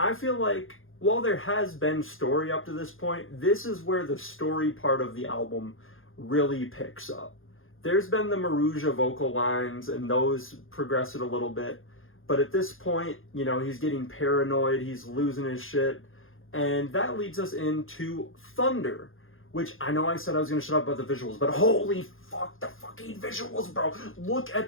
feel like, while there has been story up to this point, this is where the story part of the album really picks up. There's been the Maruja vocal lines, and those progress it a little bit. But at this point, he's getting paranoid, he's losing his shit. And that leads us into Thunder, which I know I said I was going to shut up about the visuals, but holy fuck, the fucking visuals, bro. Look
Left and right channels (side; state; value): right; late; 0.59 ms